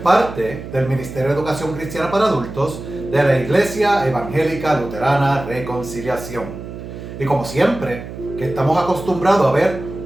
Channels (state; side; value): noise; right; hum, 11 dB below the sound